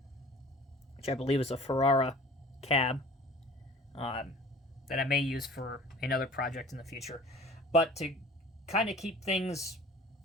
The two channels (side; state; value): both; normal; correlation 0.46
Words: which I believe is a Ferrara cab, that I may use for another project in the future. But to kind of keep things